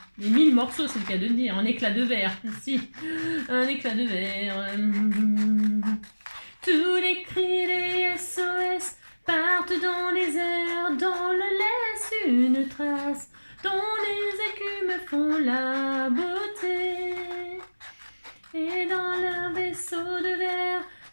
Les 1000 morceaux, c'est le cas de le dire. En éclat de verre. Si. Un éclat de verre. Tous les cris des SOS partent dans les airs. Dans le laisse une trace. Dont les écumes font la beauté. Et dans leur vaisseau de verre,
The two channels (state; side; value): inverted; both; correlation -1.00